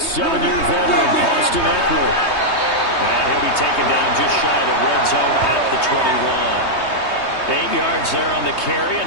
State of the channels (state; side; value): late; right; 3.2 ms